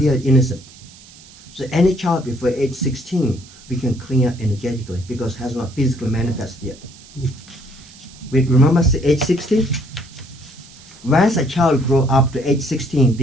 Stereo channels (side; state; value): right; noise; hiss, 22 dB below the sound